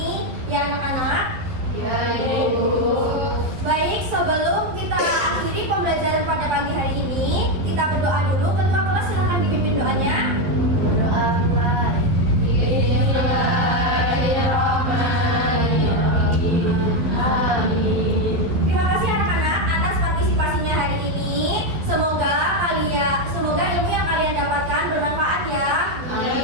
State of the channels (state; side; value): late; left; 12 ms